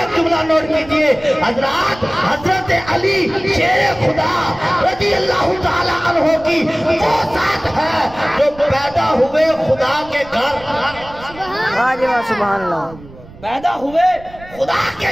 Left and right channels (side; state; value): right; noise; rumble, 20 dB below the sound